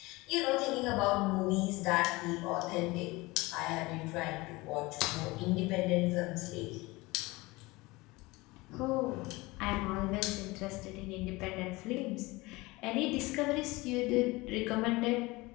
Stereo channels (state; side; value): quieter; right; 22.2 dB